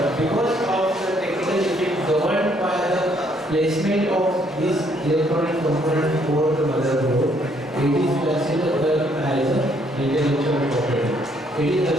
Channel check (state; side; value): normal; both; correlation 0.68